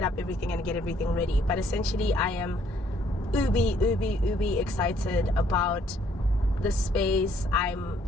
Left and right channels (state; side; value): normal; both; correlation 0.66